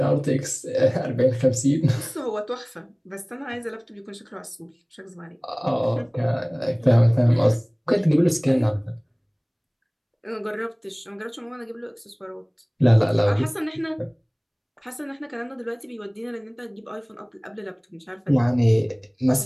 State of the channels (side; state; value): both; identical; correlation 1.00